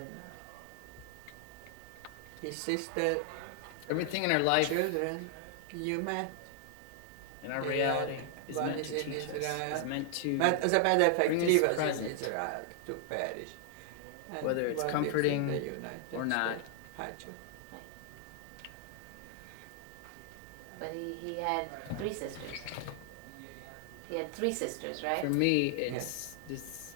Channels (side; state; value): both; different; correlation 0.00